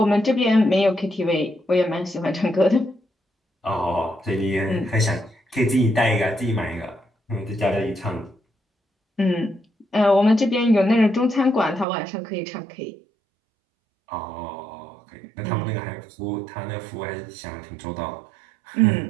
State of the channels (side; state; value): left; drops out; at 11.9 s